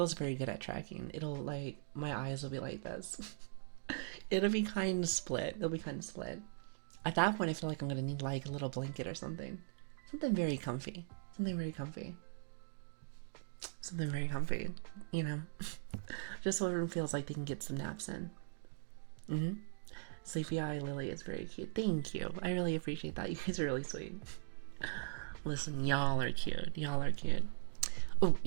very good at tracking. It'll like, my eyes will be like this. It'll be kind of split. At that point, I feel like I'm gonna need like a little blanket or something. Something very comfy. Just so everyone feels like they can get some naps in. Sleepy Eye Lily is very cute. Thank you. I really appreciate that. You guys are really sweet. Listen, y'all are cute. Oh,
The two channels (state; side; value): silent; left; digital silence